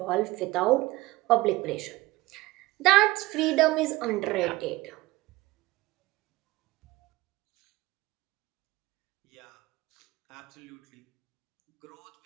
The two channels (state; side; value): quieter; left; 19.6 dB